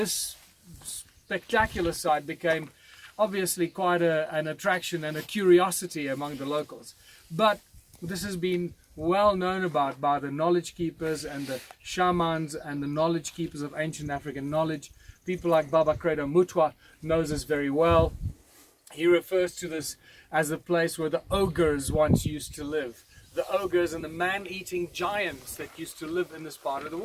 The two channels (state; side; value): identical; both; correlation 1.00